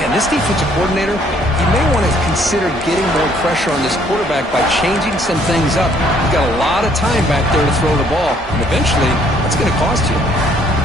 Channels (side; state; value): both; normal; correlation 0.64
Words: this defensive coordinator, he may want to consider getting more pressure on this quarterback by changing some things up. He's got a lot of time back there to throw the ball. And eventually, that's going to cost you.